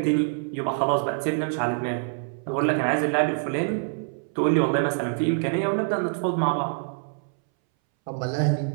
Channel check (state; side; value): silent; left; 61 dB below the other